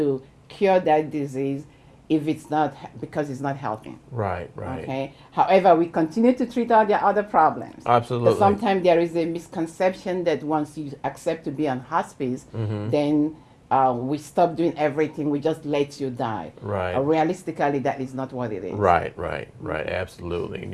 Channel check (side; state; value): both; identical; correlation 1.00